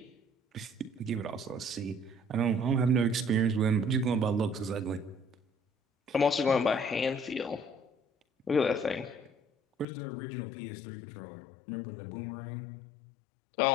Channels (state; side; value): drops out; right; at 9.9 s